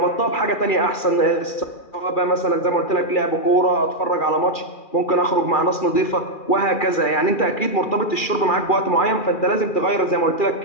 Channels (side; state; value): right; late; 2.4 ms